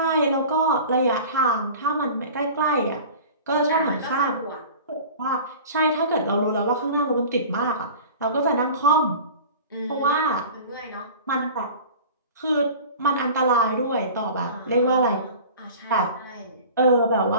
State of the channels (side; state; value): both; inverted; correlation -0.39